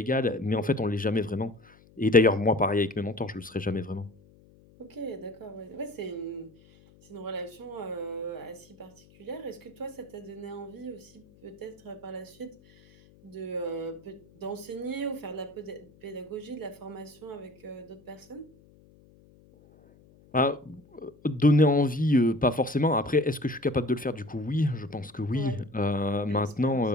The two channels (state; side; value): noise; left; hum, 27 dB below the sound